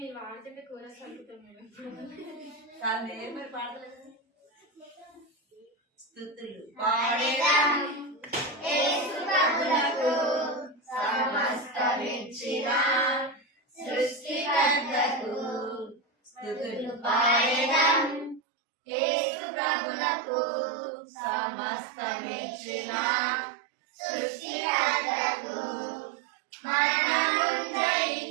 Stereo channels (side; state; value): left; drops out; at 18.4 s